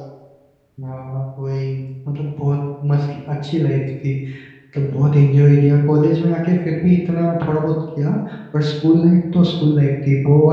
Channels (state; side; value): identical; both; correlation 1.00